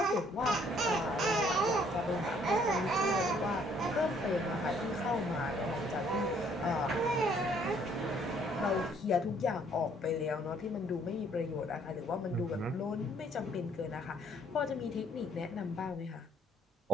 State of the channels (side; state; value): both; normal; correlation 0.63